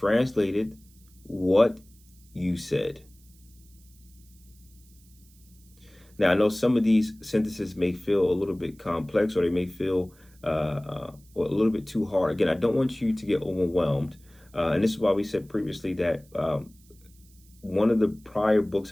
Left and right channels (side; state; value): right; noise; hiss, 29 dB below the sound